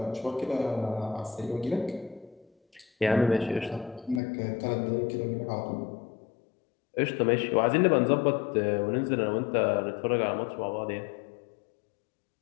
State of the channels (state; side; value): drops out; right; at 4.2 s